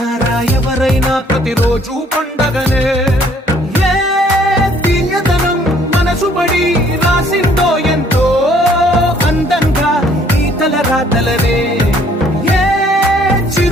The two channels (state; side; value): normal; both; correlation 0.61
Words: ఎవరైనా ప్రతిరోజు పండగనే ఏ తీయదనం మనసుబడి రాసిందో ఎంతో అందంగా ఈ తలరాతలనే ఏ